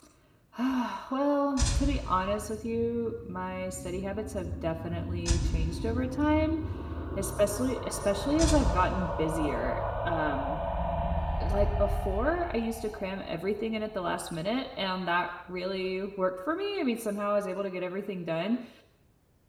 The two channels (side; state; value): both; identical; correlation 1.00